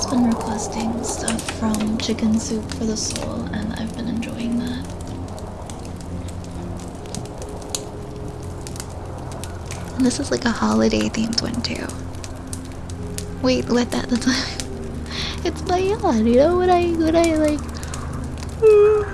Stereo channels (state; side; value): identical; both; correlation 1.00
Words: been requesting stuff from Chicken Soup for the Soul, and I've been enjoying that. And this is like a holiday themed one too. Wait, what? That's it's my yawn. You know when I like.